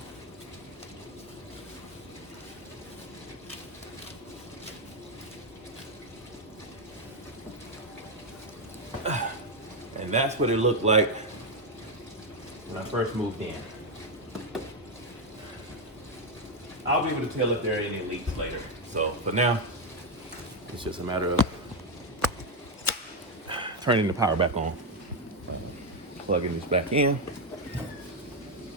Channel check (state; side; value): normal; both; correlation 0.05